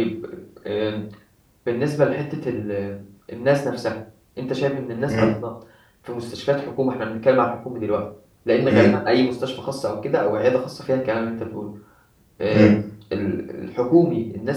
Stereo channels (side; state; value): both; identical; correlation 1.00